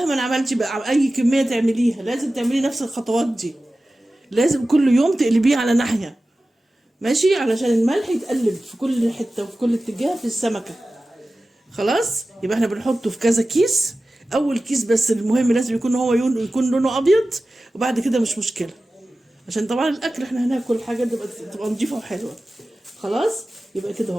عملتي بقى اي كميه تعمليها لازم تعملي نفس الخطوات دي. لازم كل يوم تقلبيه على ناحيه. ماشي علشان الملح يتقلب في كل حته وفي كل اتجاه في السمكه. خلاص. يبقى احنا بنحطه في كذا كيس. اول كيس بس المهم لازم يكون هو يكون لونه ابيض. وبعد كده مش مشكله. عشان طبعا الاكل احنا هناكل حاجه تبقى نضيفه وحلوه. خلاص. يبقى كده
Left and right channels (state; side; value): normal; both; correlation 0.95